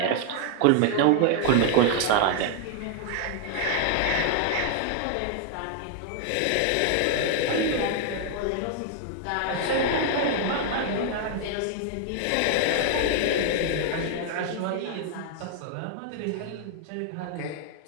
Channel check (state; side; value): different; both; correlation 0.00